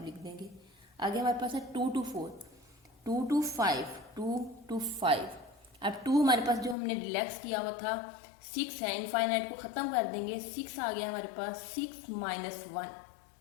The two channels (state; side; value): drops out; right; at 6.8 s